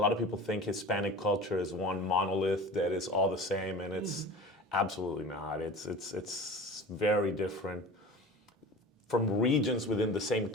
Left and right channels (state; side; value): normal; both; correlation 0.36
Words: of people think Hispanic culture is one monolith that is all the same, and it's absolutely not. It's very different. From regions within the same